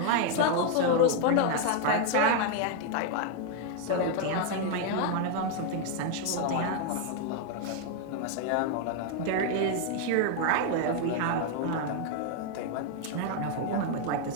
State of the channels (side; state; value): both; different; correlation 0.01